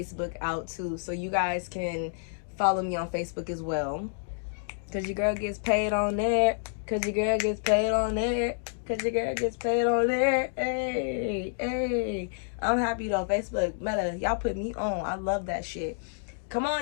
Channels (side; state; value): right; silent; digital silence